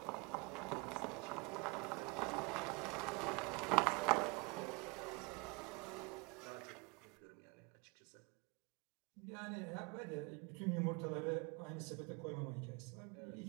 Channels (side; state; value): left; quieter; 27.9 dB